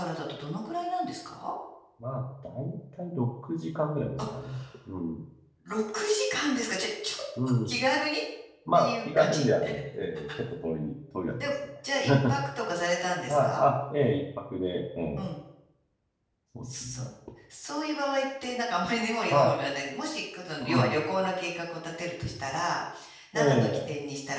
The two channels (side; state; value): both; identical; correlation 1.00